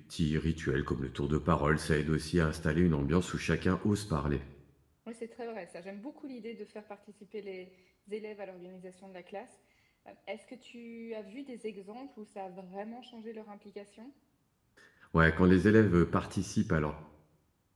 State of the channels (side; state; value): both; identical; correlation 1.00